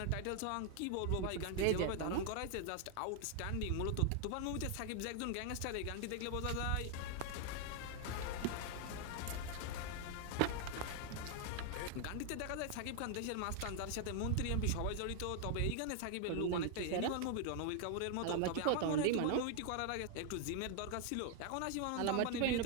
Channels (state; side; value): different; both; correlation 0.00